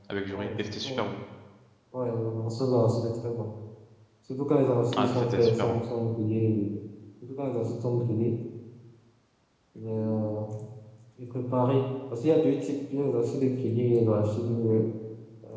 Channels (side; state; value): both; identical; correlation 1.00